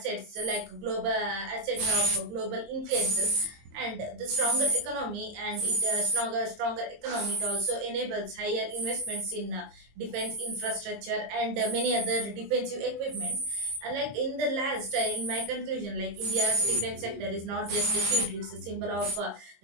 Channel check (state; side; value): late; left; 21 ms